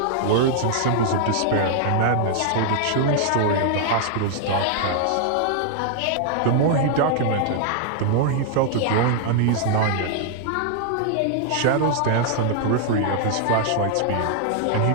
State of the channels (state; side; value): different; both; correlation -0.01